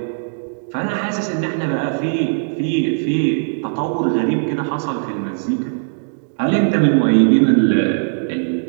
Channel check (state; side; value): silent; left; digital silence